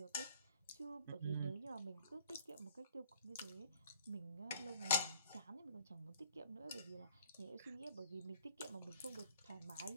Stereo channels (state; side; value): inverted; both; correlation -0.58